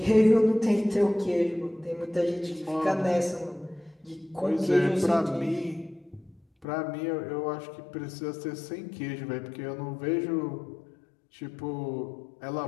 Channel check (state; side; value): drops out; right; at 6.7 s